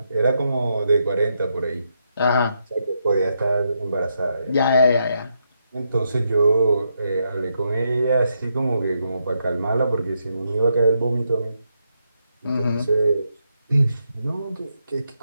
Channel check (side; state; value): both; inverted; correlation -0.80